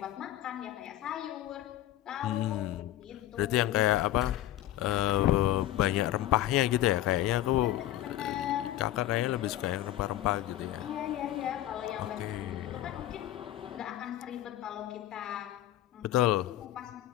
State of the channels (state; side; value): quieter; right; 13.7 dB